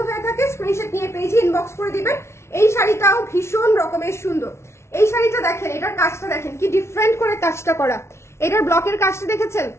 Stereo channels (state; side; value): late; right; 0.13 ms